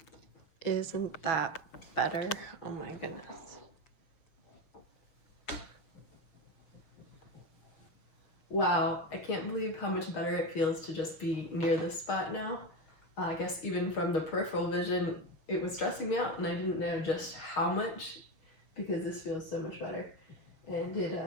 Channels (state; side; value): late; right; 6.4 ms